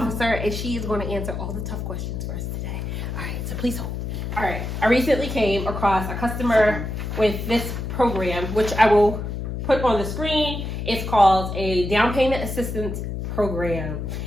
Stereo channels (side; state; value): left; noise; hum, 4 dB below the sound